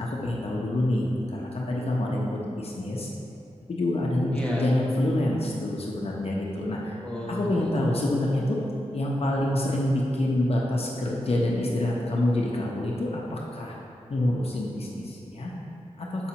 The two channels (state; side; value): normal; both; correlation 0.87